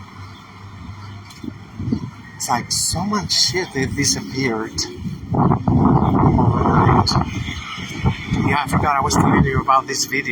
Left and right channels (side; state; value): both; identical; correlation 1.00